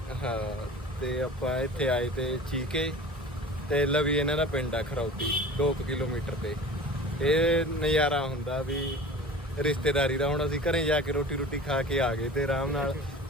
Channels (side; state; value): both; normal; correlation 0.39